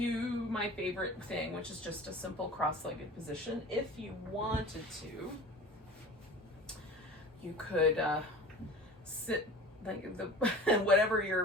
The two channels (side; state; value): both; normal; correlation 0.38